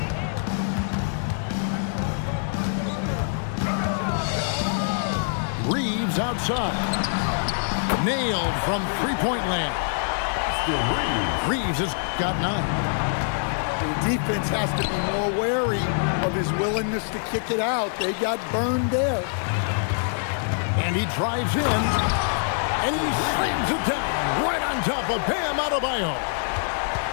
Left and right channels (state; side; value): silent; right; 62 dB below the other